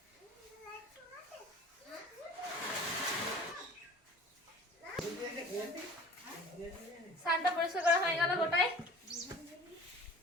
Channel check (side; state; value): both; normal; correlation 0.46